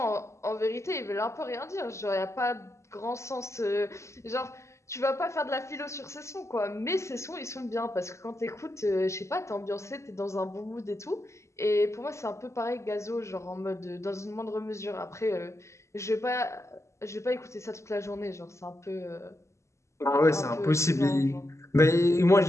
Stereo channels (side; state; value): right; late; 0.14 ms